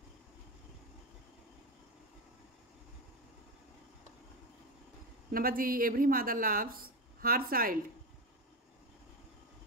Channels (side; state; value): both; normal; correlation 0.16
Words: number G every mother loves her child,